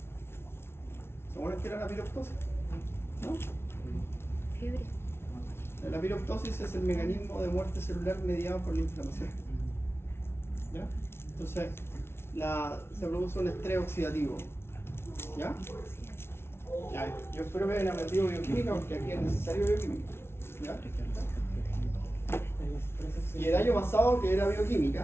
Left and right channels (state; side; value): late; right; 0.12 ms